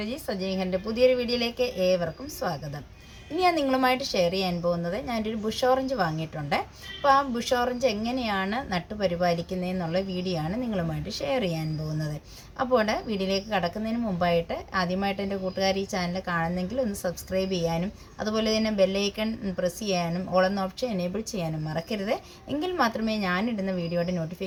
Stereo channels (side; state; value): both; identical; correlation 1.00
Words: സജിനി ഖൻ്റെ പുതിയൊരു വീഡിയോയിലേക്ക് ഏവർക്കും സ്വാഗതം. ഇനി ഞാൻ നിങ്ങളുമായിട്ട് ഷെയർ ചെയ്യാൻ പോകുന്നത്, ഞാനൊരു ബുഷ് ഓറഞ്ച് വാങ്ങിയിട്ടുണ്ട്. അപ്പോൾ ആ ബുഷ് ഓറഞ്ച് എങ്ങനെയാണ് നട്ടുപരിപാലിക്കുന്നതെന്നുള്ള വീഡിയോ ആണ് നിങ്ങളുമായിട്ട് ഷെയർ ചെയ്യാൻ പോകുന്നത്. അപ്പോൾ വീഡിയോയിലേക്ക് കടക്കുന്നതിന് മുമ്പായിട്ട് ആദ്യമായിട്ട് എൻ്റെ കൂട്ടുകാർ ഈ ചാനൽ കാണുന്നെങ്കിൽ ഒന്ന് സബ്സ്ക്രൈബ് ചെയ്യാനും അതുപോലെ തന്നെ ബെല്ലൈക്കൺ പ്രസ് ചെയ്യാനും ഓൾ എന്ന ഓപ്ഷൻ എനേബിൾ ചെയ്യാനും മറക്കരുത്. എങ്കിൽ മാത്രമേ ഞാനിടുന്ന വീഡിയോയുടെ